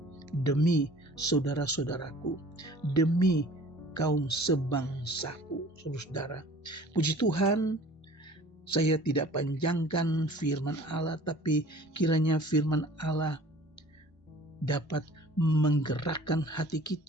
demi saudara-saudaraku, demi kaum sebangsaku. Saudara, puji Tuhan, saya tidak panjangkan firman Allah, tapi kiranya firman Allah dapat menggerakkan hati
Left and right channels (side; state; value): both; normal; correlation 0.48